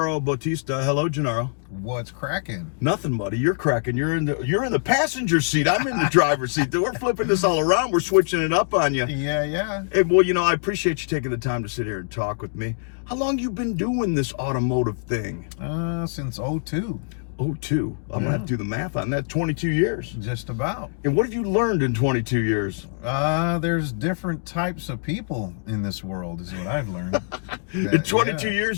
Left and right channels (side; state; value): right; silent; digital silence